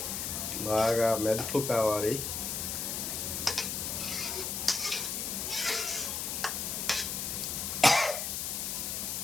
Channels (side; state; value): left; noise; hiss, 2 dB below the sound